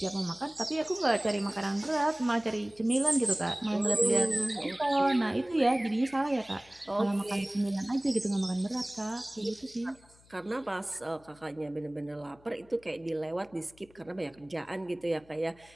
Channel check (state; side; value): noise; left; hum, 28 dB below the sound